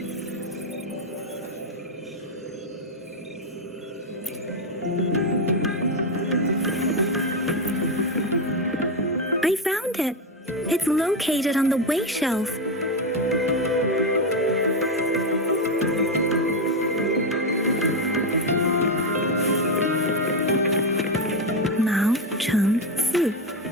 I found it. It's located on the way shelf. Mao Cheng Si,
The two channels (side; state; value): both; normal; correlation 0.08